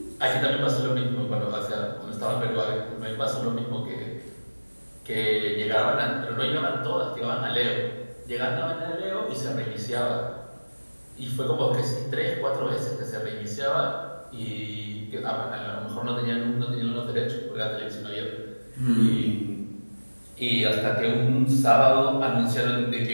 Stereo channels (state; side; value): inverted; both; correlation -1.00